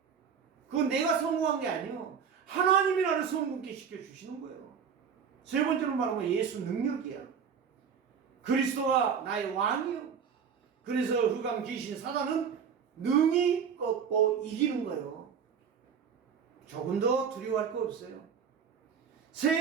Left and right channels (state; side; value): quieter; left; 7.0 dB